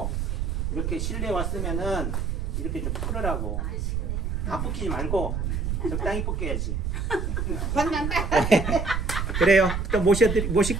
이렇게 실내 왔으면은 이렇게 좀 풀으라고. 다 벗기지 말고 적당히 벗겨야지. 만난다. 그래요. 또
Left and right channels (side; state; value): right; noise; rumble, 1 dB below the sound